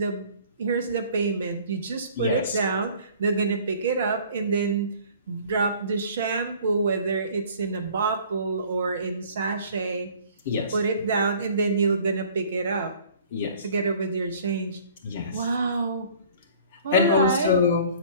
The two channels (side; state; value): both; inverted; correlation -0.51